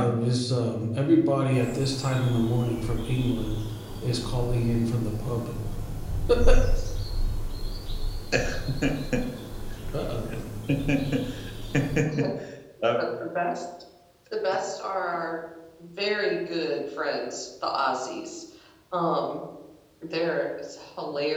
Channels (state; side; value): identical; both; correlation 1.00